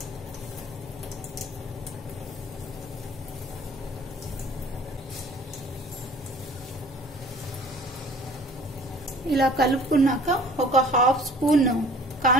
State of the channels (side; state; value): both; normal; correlation 0.50